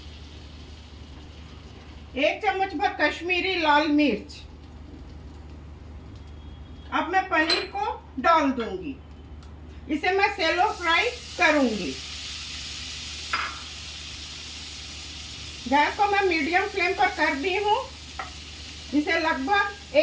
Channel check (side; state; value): both; identical; correlation 1.00